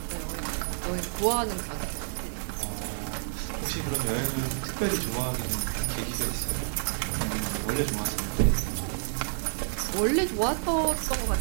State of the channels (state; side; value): silent; left; digital silence